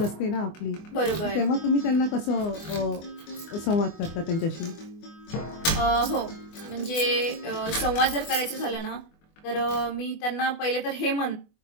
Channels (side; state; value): right; late; 24 ms